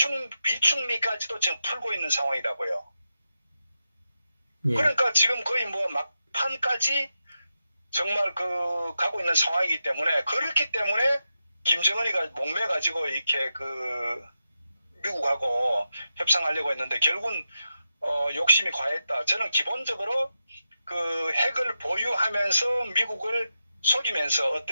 비축미까지도 지금 풀고 있는 상황이라고요. 그러니까 지금 거의 뭐 막판까지 정말 그 가고 있는 상황이기 때문에 그렇기 때문에 김정은이가 목매가지고 이렇게 그 미국하고 협상하려고 했는데 결국은 욕심이 과했다. 저는 기본적으로 그 핵을 보유하면서 미국을 속이면서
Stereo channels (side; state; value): both; inverted; correlation -0.88